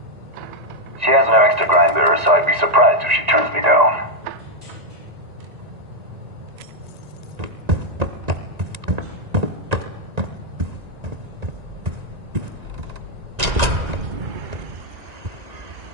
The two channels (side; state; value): left; late; 1.9 ms